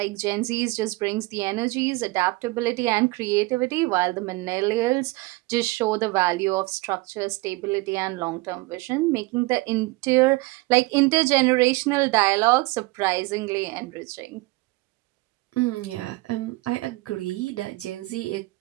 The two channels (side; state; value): left; quieter; 22.5 dB